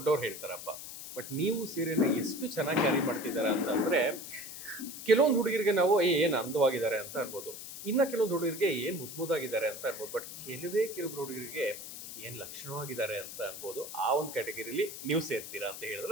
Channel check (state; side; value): noise; left; hiss, 10 dB below the sound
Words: ಹೇಳ್ತಾರಪ್ಪ. ಬಟ್ ನೀವು ಸೀರೆನ ಎಷ್ಟು ಚೆನ್ನಾಗಿ ಕ್ಯಾರಿ ಮಾಡ್ತಿದ್ದಾರೆ ಅಂತಂದ್ರೆ, ಕೆಲವೊಂದು ಹುಡುಗರಿಗೆ ನಾವು ಏನು ಅಂದವಾಗಿದ್ದಾರೆ ಅಂತ ಅನ್ಬೋದು, ಇನ್ನ ಕೆಲವೊಂದು ಹುಡುಗರಿಗೆ ಏನು ಮುದ್ದಾಗಿದ್ದಾರೆ ಅಂತ ಅನ್ಬೋದು. ಬಟ್ ಕೆಲವೊಬ್ರು ಹುಡುಗರಿಗೆ ಏನ್ ಲಕ್ಷಣವಾಗಿದ್ದಾರೆ ಅಂತ ಅನ್ಬೋದು. ಆ ಒಂದು ಕ್ಯಾಟಗರಿಲಿ ನೀವು ಸೇರ್ತೀರಾ ಅಂತ